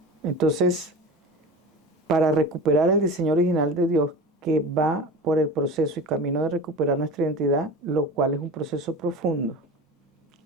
Entonces, para recuperar el diseño original de Dios que va por el proceso y camino de recuperar nuestra identidad, lo cual es un proceso profundo,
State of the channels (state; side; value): normal; both; correlation 0.32